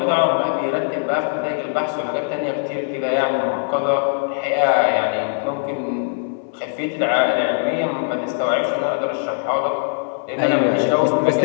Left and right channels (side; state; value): right; silent; 65 dB below the other